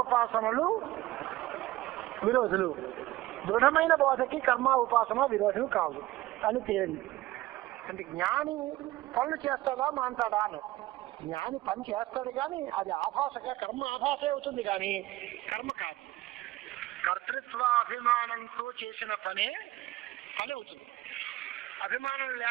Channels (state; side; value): quieter; left; 17.1 dB